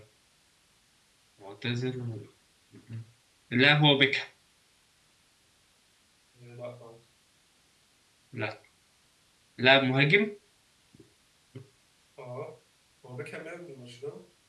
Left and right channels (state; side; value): identical; both; correlation 1.00